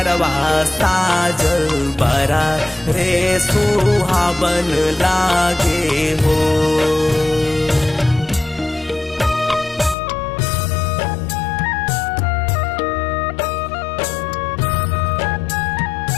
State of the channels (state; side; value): drops out; right; at 10.0 s